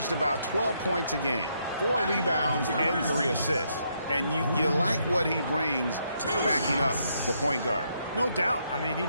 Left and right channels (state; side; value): inverted; both; correlation -0.76